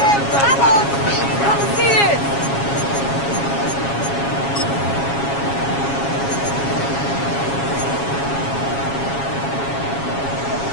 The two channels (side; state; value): right; late; 7.3 ms